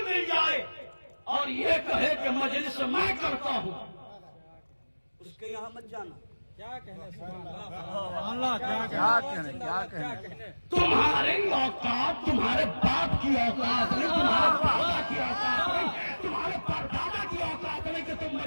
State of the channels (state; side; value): inverted; both; correlation -1.00